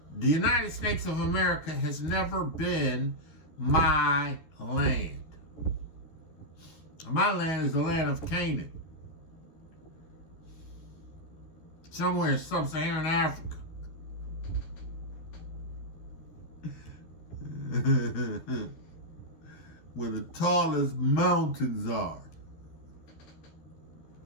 The United States of America has never been my land. My land is the land of Canaan. Somewhere in sub-Saharan Africa. Where the tallest mountains are.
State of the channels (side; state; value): right; late; 13 ms